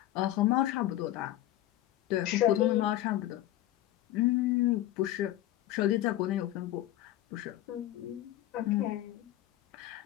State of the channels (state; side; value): quieter; right; 14.2 dB